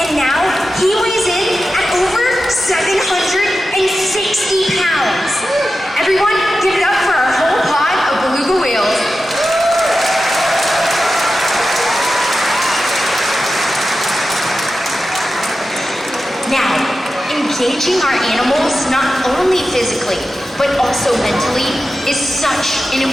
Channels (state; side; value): normal; both; correlation 0.92